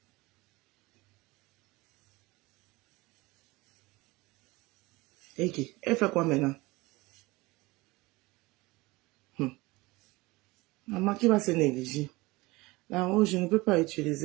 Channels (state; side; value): quieter; left; 22.0 dB